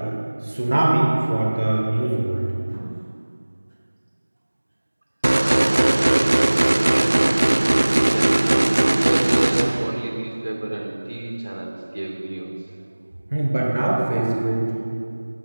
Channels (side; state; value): both; inverted; correlation -1.00